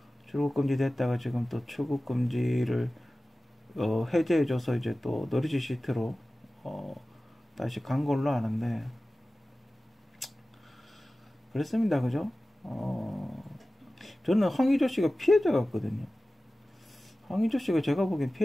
출국 금지 됐다가 지금 또 출국 금지를 해제해줘서 이제 또 너리지 시트로 다시 간 걸로 아는데, 그랬습니다. 그죠? 저는 황의조 씨가 피해자 같거든요. 황의조 씨가 제가 보기엔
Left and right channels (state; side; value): normal; both; correlation 0.96